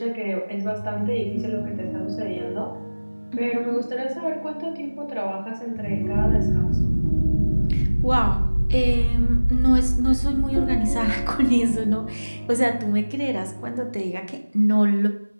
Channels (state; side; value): inverted; both; correlation -1.00